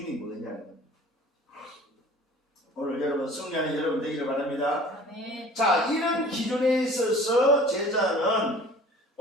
뭐냐. 오늘 여러분 승리하는 여러분 되기를 바랍니다. 네. 자, 이런 기준에 있어서 제자는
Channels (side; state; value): both; normal; correlation 0.47